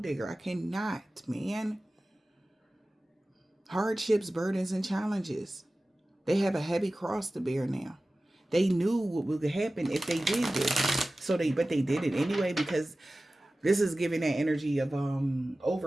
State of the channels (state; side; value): normal; both; correlation 0.96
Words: digger. I cannot, man. Hardships, burdens, and challenges. They have a heavy cross to bear now. They knew what would happen if they did this. But they did it anyway, because this is giving that energy of